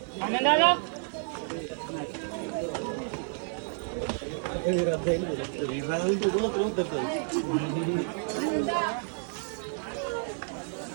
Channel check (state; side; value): silent; left; 58 dB below the other